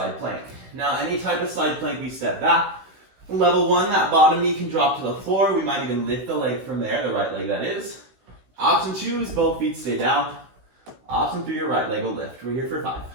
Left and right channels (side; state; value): left; late; 16 ms